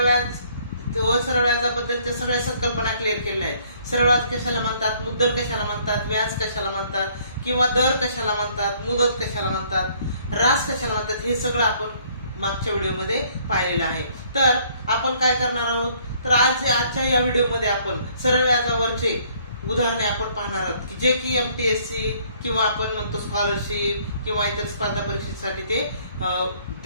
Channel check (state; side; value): inverted; both; correlation -0.62